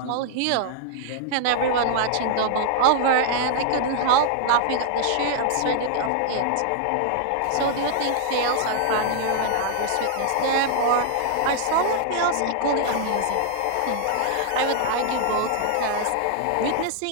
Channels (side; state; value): both; different; correlation -0.01